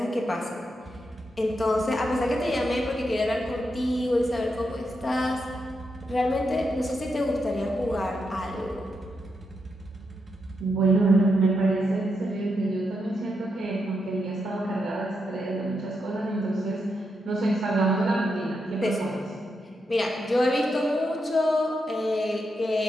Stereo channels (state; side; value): normal; both; correlation 0.84